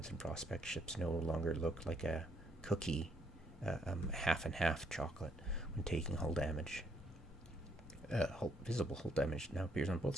and Prospect ships no longer look like a cookie, half and half chocolate when taking hull damage. Visible hull damage now appears on both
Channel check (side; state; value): both; normal; correlation 0.71